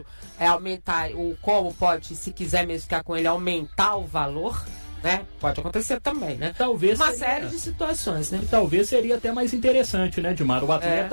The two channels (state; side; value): inverted; both; correlation -1.00